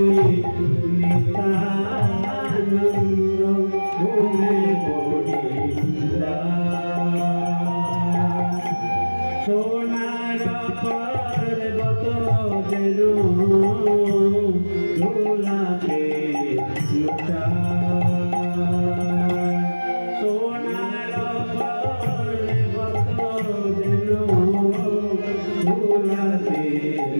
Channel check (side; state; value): both; inverted; correlation -1.00